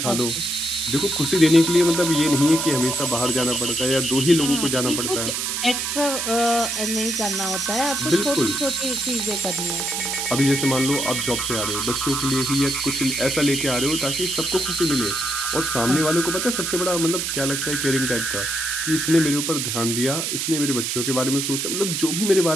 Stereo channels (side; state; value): right; noise; hiss, 1 dB below the sound